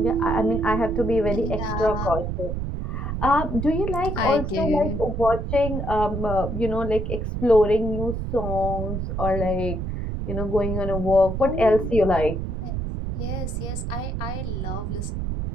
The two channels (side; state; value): right; noise; rumble, 3 dB below the sound